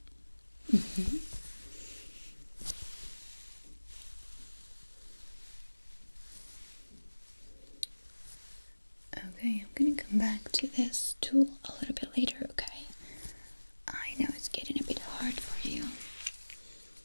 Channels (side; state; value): both; inverted; correlation -1.00